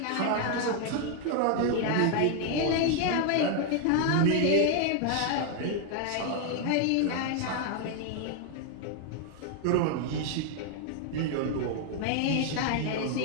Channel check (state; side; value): different; both; correlation 0.00